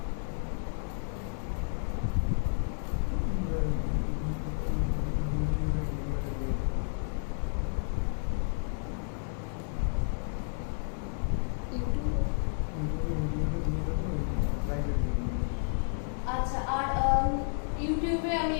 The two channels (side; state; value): right; silent; 57 dB below the other